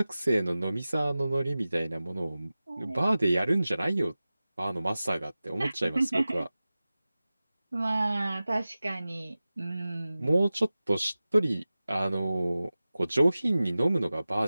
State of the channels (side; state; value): both; inverted; correlation -0.96